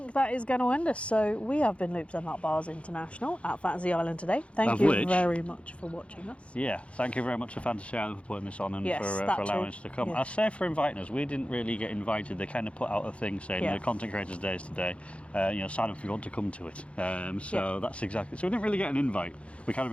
that is going to end us. So we have been Loops and Nut Bars International at Fantasy Island today. Thank you very much for watching us. Yeah, thank you very much to Fantasy Island for putting this on and for allowing us to come. Yeah. I say for inviting us. We didn't really get invited. They kind of put out a thing saying the Content Creators Day is today. Sign up if you want to come to it. That's exactly. So we didn't really get an invite. We kind of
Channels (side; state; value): right; late; 0.061 ms